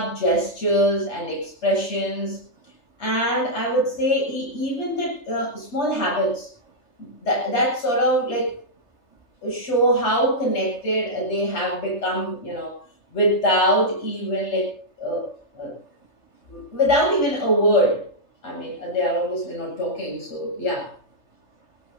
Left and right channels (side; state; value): right; late; 3.3 ms